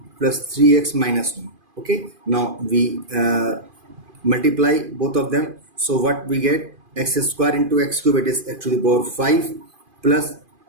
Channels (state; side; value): late; left; 2.5 ms